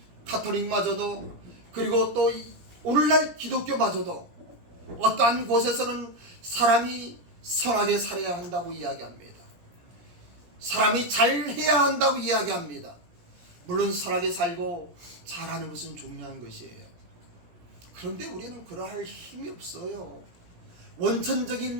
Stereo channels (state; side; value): late; left; 17 ms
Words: 카톨릭마저도 그리고 또 오늘날 기독교마저도 어떠한 곳에서는 사람이 선하게 살아야 한다고 이야기합니다. 사람이 잘해야 한다고 이야기합니다. 물론 선하게 살고 잘하는 것은 중요한 것이에요. 그런데 우리는 그러할 힘이 없어요.